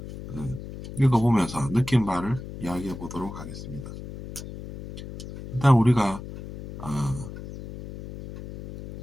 읽어보면서 느낀 바를 이야기해 보도록 하겠습니다. 일단 우리가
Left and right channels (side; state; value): left; noise; hum, 11 dB below the sound